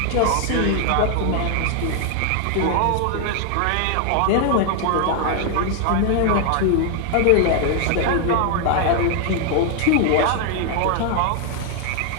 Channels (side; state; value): both; different; correlation 0.00